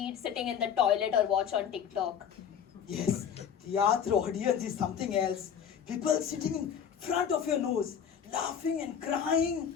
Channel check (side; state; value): right; quieter; 8.1 dB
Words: sitting in the toilet or watch on TikTok. Yes, theatre audience is something else. People sitting in front of your nose, laughing and crying.